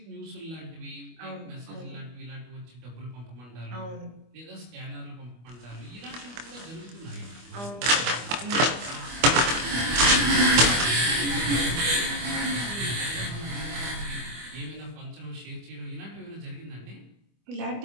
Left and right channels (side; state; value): left; late; 25 ms